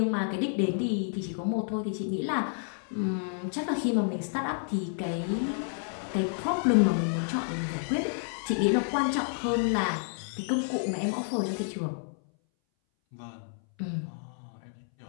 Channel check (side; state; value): right; silent; 58 dB below the other